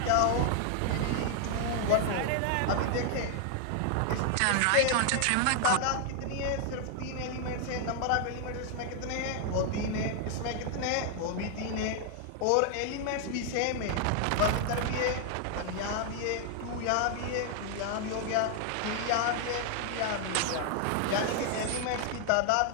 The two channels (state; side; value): different; both; correlation 0.00